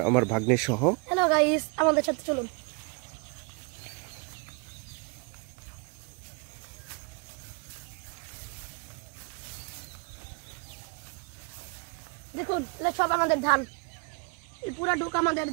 আমার ভাগ্নের সহ। হ্যালো গাইস, আমাদের সাথে চলুন। দেখুন, এটা সব আমাদের ধান, এই পুরা ডুক আমাদের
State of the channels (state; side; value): quieter; left; 31.6 dB